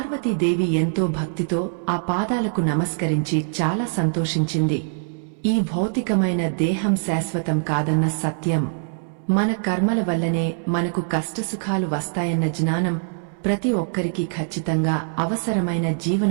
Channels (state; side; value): silent; left; 63 dB below the other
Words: ఎంతో భక్తితో ఆ పాదాలకు నమస్కరించి చాలా సంతోషించింది. ఈ భౌతికమైన దేహం శాశ్వతం కాదన్న సత్యం, మన కర్మల వల్లనే మనకు కష్టసుఖాలు వస్తాయన్న జ్ఞానం ప్రతి ఒక్కరికి ఖచ్చితంగా అవసరమైన